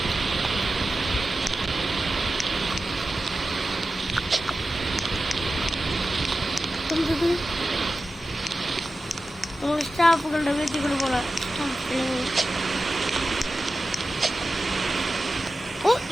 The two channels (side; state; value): both; normal; correlation 0.93